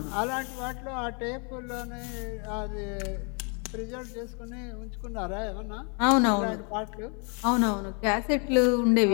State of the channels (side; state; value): right; quieter; 36.2 dB